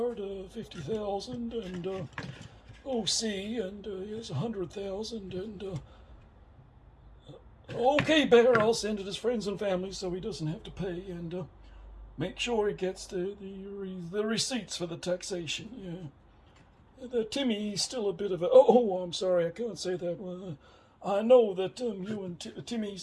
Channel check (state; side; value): identical; both; correlation 1.00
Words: 50,000, and OC, and here's 100,000, and okay, Bear, I'll send it his friends and family so he doesn't have to pay, and make sure he gets the receipts for the taxation. Yeah, Timmy's still a bit of a. Oh, I'm sorry, I can't say that. I know that you and